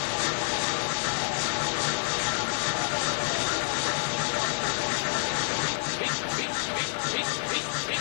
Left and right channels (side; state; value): right; silent; digital silence